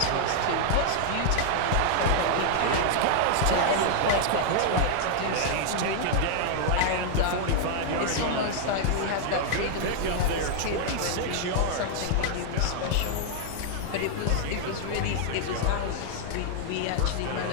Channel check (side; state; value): both; different; correlation 0.00